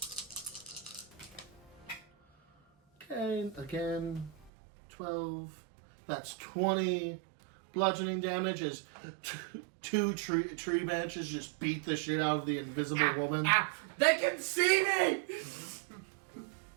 Okay, again, 12. That's 20 bludgeoning damage as two tree branches just beat the shit out of the invisible woman. They can see me!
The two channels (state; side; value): drops out; left; at 4.5 s